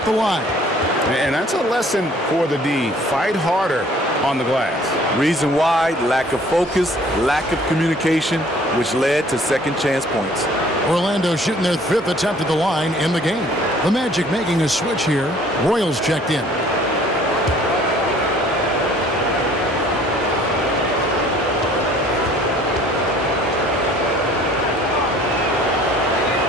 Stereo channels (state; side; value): normal; both; correlation 0.55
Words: the line. And that's a lesson for the D. Fight harder on the glass. Reason why, lack of focus, lack of communication, which led to second chance points. Orlando shooting their 5th attempt at the line in the game. The Magic making a switch here. Royals checked in.